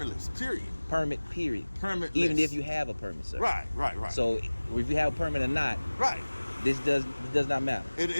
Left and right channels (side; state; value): both; inverted; correlation -1.00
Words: period. Permit, period. Permitless. Even if you have a permit, sir. Right. So if you have a permit or not, right. This does not matter.